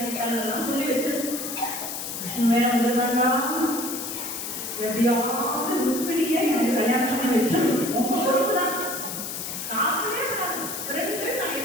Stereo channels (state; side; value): noise; left; hiss, 6 dB below the sound